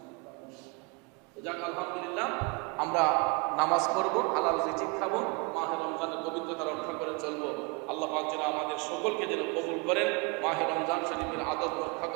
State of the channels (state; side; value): quieter; left; 29.5 dB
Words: যাক আলহামদুলিল্লাহ, আমরা নামাজ পড়বো, হালাল রিজিক খাবো, মাহে রমজানের পবিত্রতা রক্ষা করে চলবো। আল্লাহ পাক যেন আমাদের সকলকে যেন কবুল করেন, মাহে রমজান শরীফের আদব রক্ষা